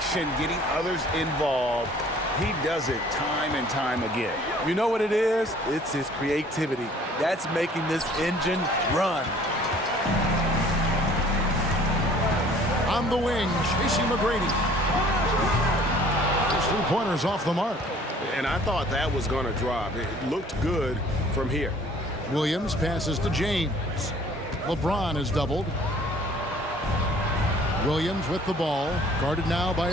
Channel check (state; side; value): normal; both; correlation 0.54